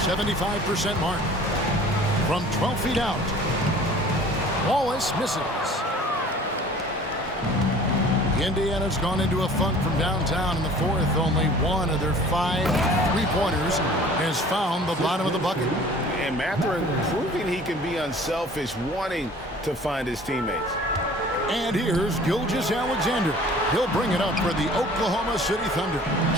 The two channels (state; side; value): normal; both; correlation 0.48